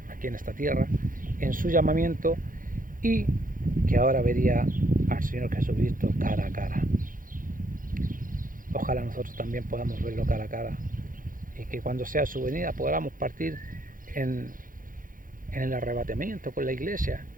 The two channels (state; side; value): late; left; 0.40 ms